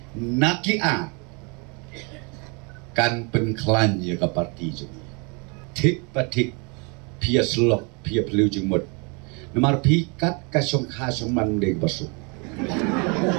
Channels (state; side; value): quieter; left; 32.7 dB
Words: nakia kan penklan ya ka parti jeng. Tik patik pia slok pia pelu jeng mut. Namar pikat ka syong kha syong man deg basu.